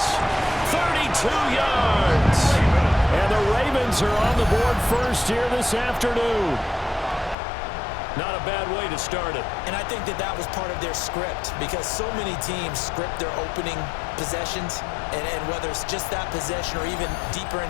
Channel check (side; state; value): right; drops out; at 7.4 s